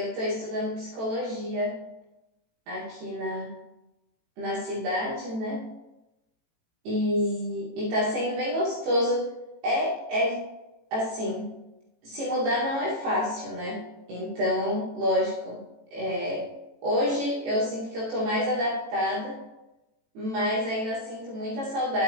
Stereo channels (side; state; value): left; late; 18 ms